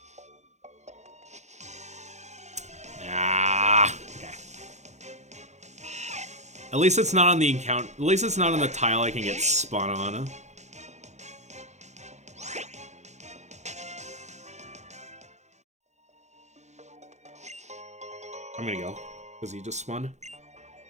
Ah, okay. At least it's not on the account. At least it's not on the tile I can get spun on. I'm gonna go, because he just spun.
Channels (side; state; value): left; late; 0.33 ms